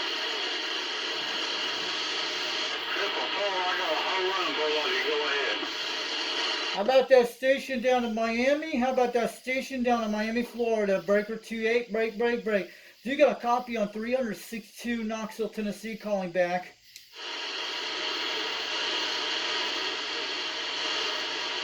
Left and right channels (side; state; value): both; identical; correlation 1.00